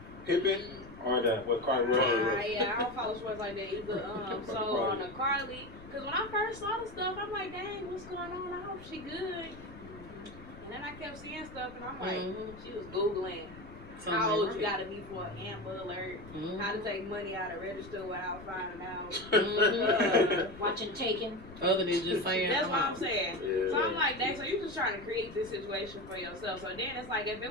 Pippen or what Carly Russell? Yeah, I don't follow sports like that either. So on the Carly, because when I first saw the stuff, I'm like, dang, what's going on? I hope she good. And then I kept seeing stuff, and I'm like, she was Googling how old you gotta be for an Amber Alert, how to take money out of register without finding out. Watching Taken. Other than just saying, That's what I'm saying. Yeah. So I'm like, dang, so you're just trying to create this situation for yourself. So then it's like, if it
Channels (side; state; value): left; noise; rumble, 17 dB below the sound